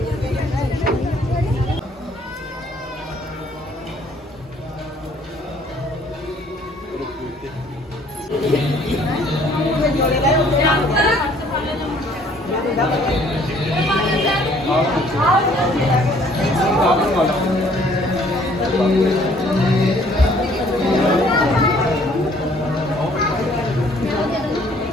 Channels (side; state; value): both; normal; correlation 0.60